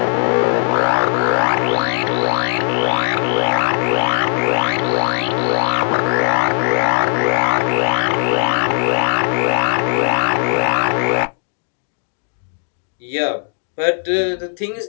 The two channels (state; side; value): silent; right; digital silence